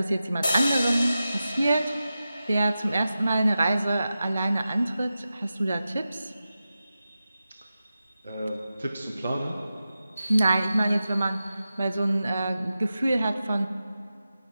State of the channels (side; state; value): both; inverted; correlation -0.93